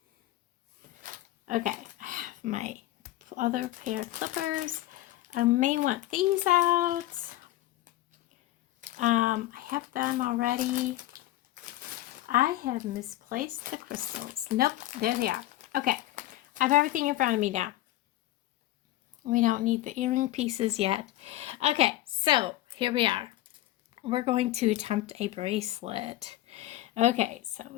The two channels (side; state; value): right; quieter; 15.8 dB